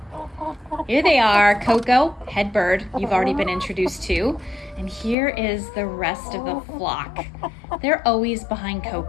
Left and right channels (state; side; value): drops out; right; at 5.2 s